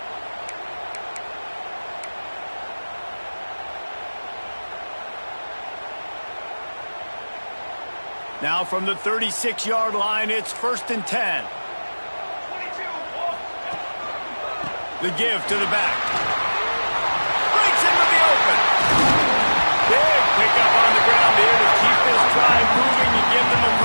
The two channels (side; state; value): both; inverted; correlation -1.00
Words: Now from the 36-yard line, it's 1st and 10. The give to the back.